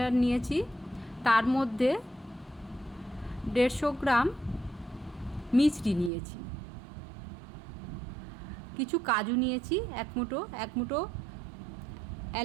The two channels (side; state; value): left; drops out; at 6.1 s